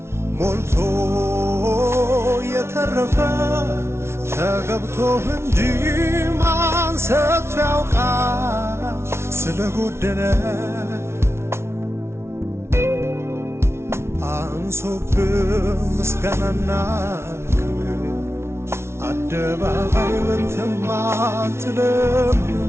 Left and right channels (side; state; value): left; late; 0.13 ms